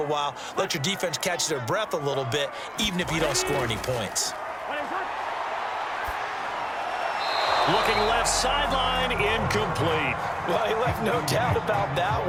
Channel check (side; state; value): both; identical; correlation 1.00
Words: while, let your defense catch their breath a little bit, even if you don't score any points. Looking left sideline, incomplete. Well, he left no doubt about that